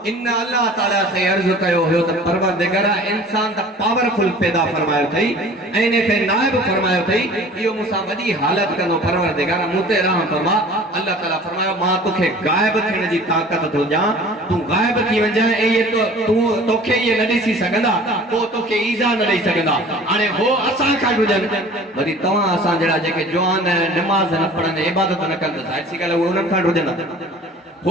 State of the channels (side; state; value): both; normal; correlation 0.45